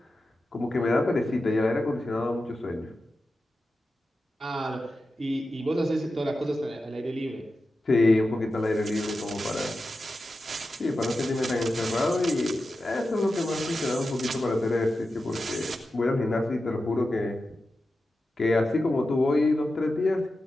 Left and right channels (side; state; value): both; normal; correlation 0.92